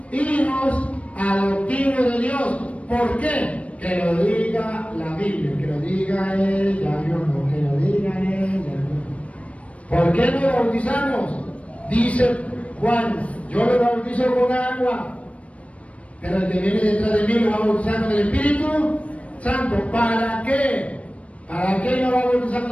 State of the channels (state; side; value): late; right; 0.064 ms